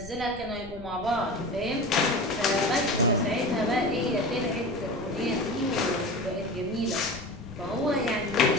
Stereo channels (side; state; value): left; noise; rumble, 16 dB below the sound